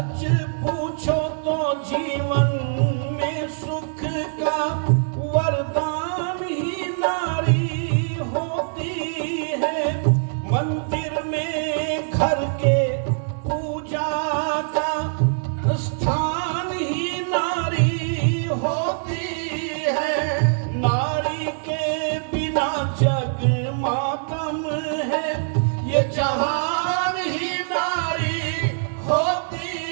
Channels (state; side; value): silent; left; digital silence